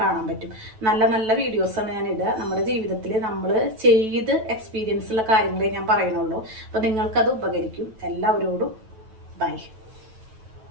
കാണാൻ പറ്റും. നല്ല നല്ല വീഡിയോസാണ് ഞാൻ ഇടുക. നമ്മുടെ ജീവിതത്തിൽ നമ്മൾ ചെയ്ത് എക്സ്പീരിയൻസ് ഉള്ള കാര്യങ്ങളെ ഞാൻ പറയണുള്ളൂ. അപ്പോൾ നിങ്ങൾക്കത് ഉപകരിക്കും. എല്ലാവരോടും ബൈ.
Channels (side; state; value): left; late; 9.1 ms